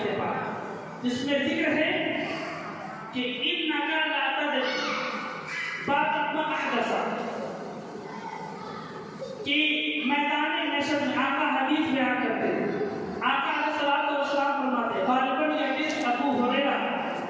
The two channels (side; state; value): both; identical; correlation 1.00